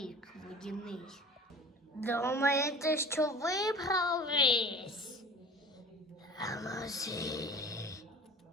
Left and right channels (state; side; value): normal; both; correlation 0.43